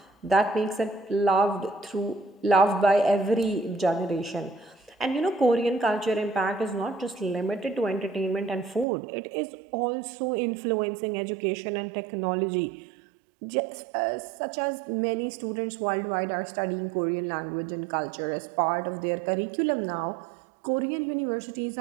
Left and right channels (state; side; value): drops out; left; at 8.8 s